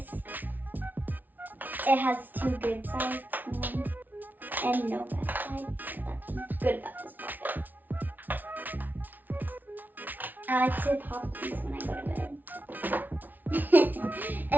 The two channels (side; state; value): left; late; 0.083 ms